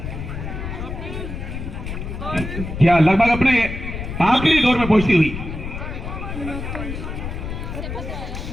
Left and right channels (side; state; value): left; noise; rumble, 7 dB below the sound